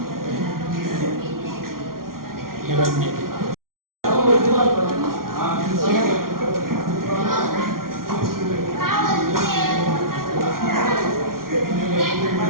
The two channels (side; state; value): left; late; 0.92 ms